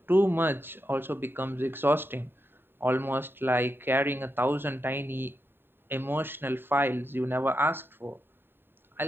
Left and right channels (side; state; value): left; late; 0.10 ms